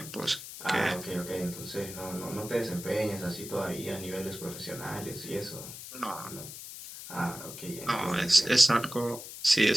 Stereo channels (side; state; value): left; noise; hiss, 11 dB below the sound